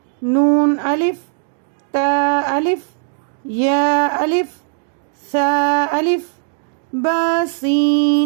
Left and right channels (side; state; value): left; silent; digital silence